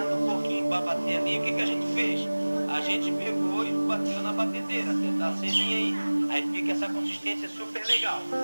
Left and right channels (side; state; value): both; inverted; correlation -1.00